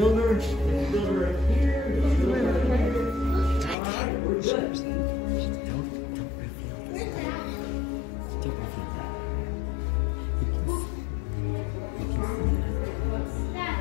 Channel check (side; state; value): right; drops out; at 3.8 s